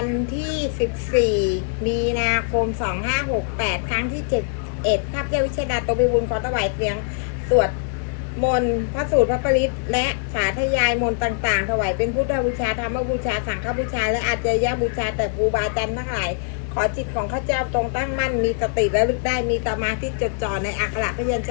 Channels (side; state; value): right; silent; digital silence